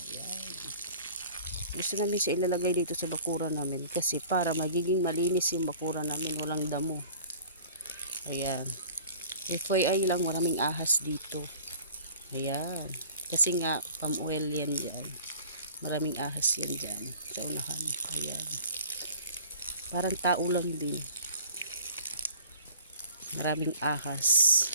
Gusto namin siya ilalagay dito sa bakura namin kasi para magiging malinis yung bakura namin, walang damo. Ayan. FYI lang, maraming ahas dito. Ayan. Kasi nga, palm oil yan dyan. Maraming ahas yan dyan sa unahan. Ayan. Parang tao lang din. Maraming ahas.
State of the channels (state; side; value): inverted; both; correlation -0.47